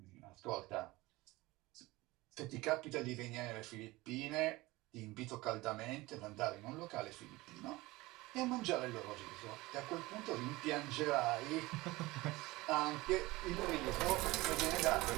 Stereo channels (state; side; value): quieter; left; 20.5 dB